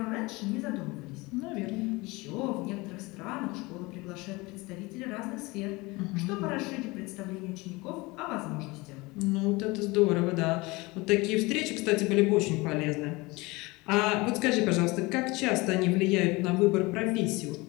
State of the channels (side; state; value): right; quieter; 23.4 dB